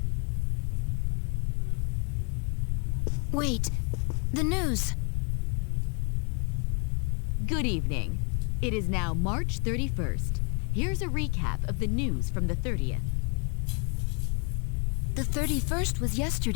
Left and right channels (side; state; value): right; quieter; 37.8 dB